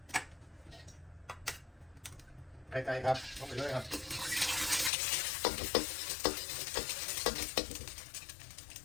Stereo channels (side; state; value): right; drops out; at 4.9 s